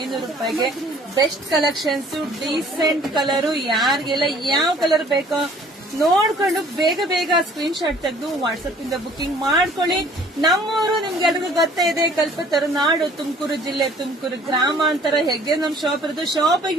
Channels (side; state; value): both; normal; correlation 0.54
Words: ರೂಪಾಯಿಗೆ. Best collections, decent colour. ಯಾರಿಗೆಲ್ಲ ಯಾವ ಕಲರ್ ಬೇಕೋ ನೋಡ್ಕೊಂಡು ಬೇಗ ಬೇಗ ಸ್ಕ್ರೀನ್ ಶಾಟ್ ತೆಗೆದು ವಾಟ್ಸ್ಆಪ್ ಇಂದ ಬುಕಿಂಗ್ ಮಾಡ್ಕೊಳ್ಳಿ. ನಮ್ಮೂರು ನಿಮ್ಗೆಲ್ರಿಗೂ ಗೊತ್ತೇ ಇದೆ, ಕಲ್ಪತರುನಾಡು, ತುಮಕೂರು ಜಿಲ್ಲೆ, ತುಮಕೂರು ಗ್ರಾಮಾಂತರ. ಹೇಗೆ ನಮ್ ಶಾಪ್ ಇರೋದು,